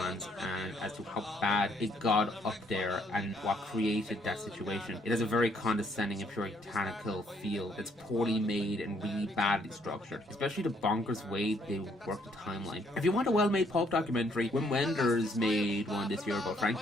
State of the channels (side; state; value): both; normal; correlation 0.68